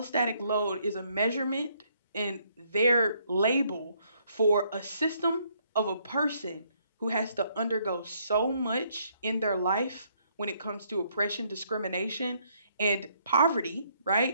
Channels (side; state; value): both; inverted; correlation -0.69